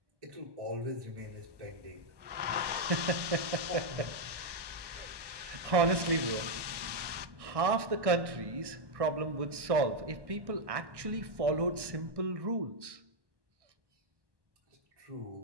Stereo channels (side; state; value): left; late; 1.2 ms